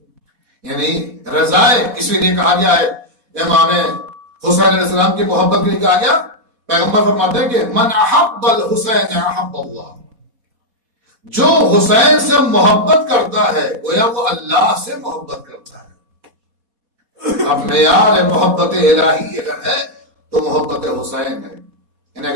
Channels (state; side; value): late; left; 4.1 ms